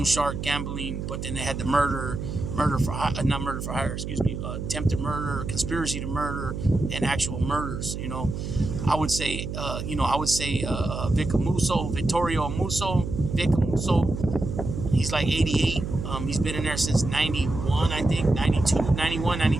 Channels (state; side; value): noise; right; hum, 5 dB below the sound